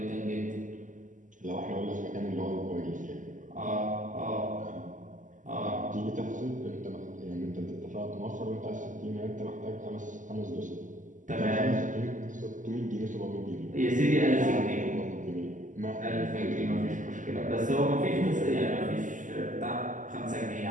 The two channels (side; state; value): left; late; 0.37 ms